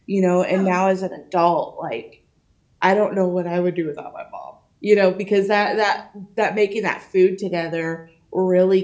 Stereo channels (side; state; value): both; identical; correlation 1.00